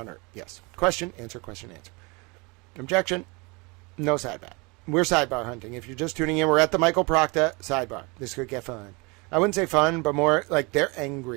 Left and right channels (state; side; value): quieter; left; 28.1 dB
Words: Yes. Question, answer, question, answer. Objection. No sidebar. We're sidebar hunting. If you're just tuning in, we're at the Michael Proctor sidebar. This could get fun. I wouldn't say fun, but more like they're